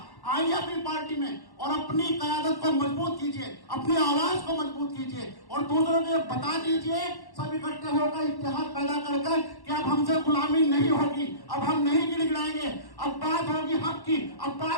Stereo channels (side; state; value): right; late; 1.1 ms